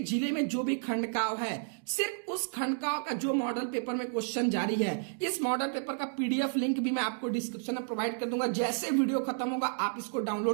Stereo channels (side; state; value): left; silent; digital silence